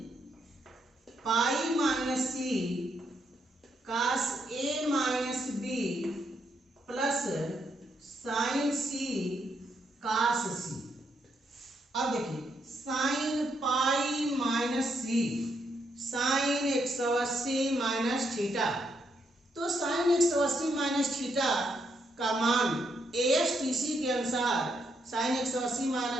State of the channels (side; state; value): both; normal; correlation 0.77